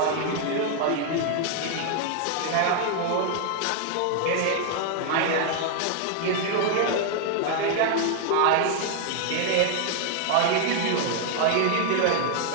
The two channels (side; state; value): both; different; correlation 0.00